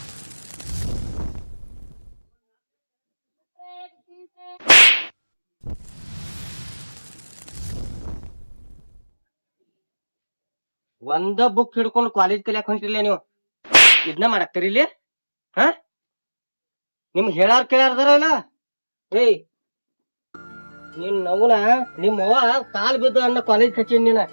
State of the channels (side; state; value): both; inverted; correlation -1.00